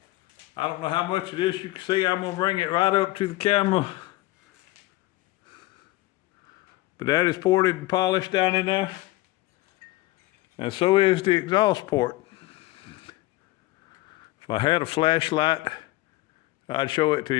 I don't know how much of this you can see. I'm gonna bring it right up to the camera. But that is ported and polished down in there. And so is the exhaust port. If I had a flashlight, I'd show it to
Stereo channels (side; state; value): right; quieter; 18.5 dB